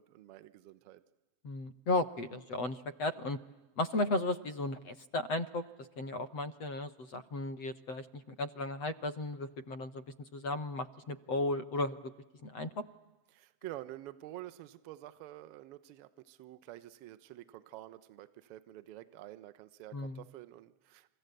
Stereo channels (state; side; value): late; right; 8.0 ms